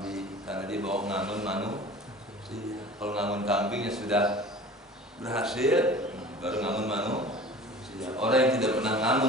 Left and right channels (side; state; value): both; normal; correlation 0.41